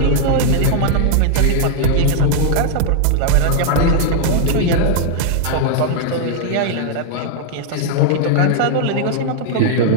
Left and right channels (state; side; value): different; both; correlation -0.01